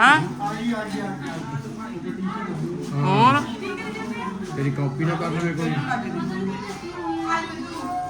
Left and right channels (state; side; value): identical; both; correlation 1.00